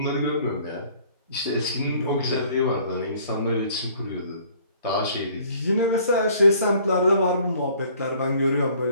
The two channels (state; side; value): inverted; both; correlation -0.57